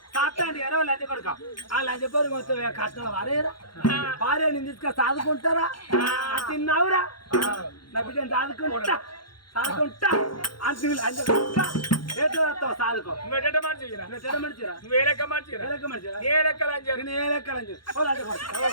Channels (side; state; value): right; late; 0.72 ms